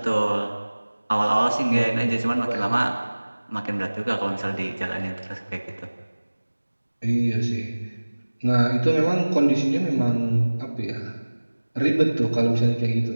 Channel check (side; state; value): both; inverted; correlation -1.00